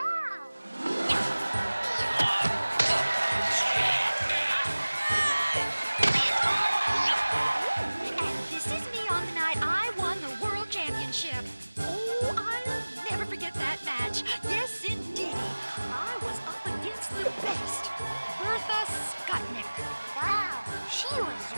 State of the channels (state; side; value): inverted; both; correlation -1.00